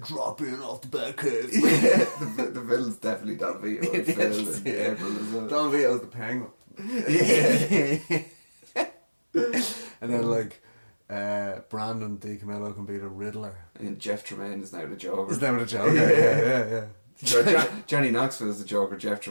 drop in off the back cave. Yeah, the villain's definitely Don Vito and Phil in April as well. Don Vito's the penguin. And then like Brandon DiCamillo can be the Riddler. And Jeff Tremaine is now the Joker. His name of the Joker. Yeah. Johnny Knoxville's the Joker. Jeff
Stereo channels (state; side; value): inverted; both; correlation -1.00